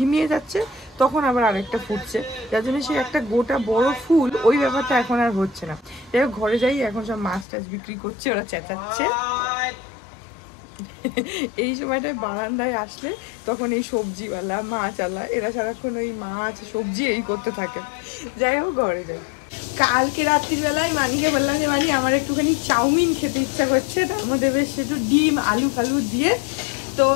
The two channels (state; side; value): drops out; right; at 7.5 s